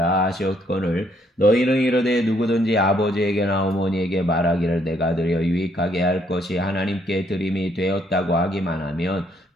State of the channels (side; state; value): both; normal; correlation 0.70